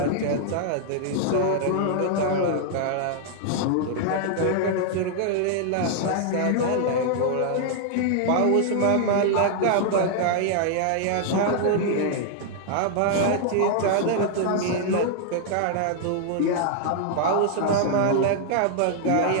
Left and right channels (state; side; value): different; both; correlation -0.01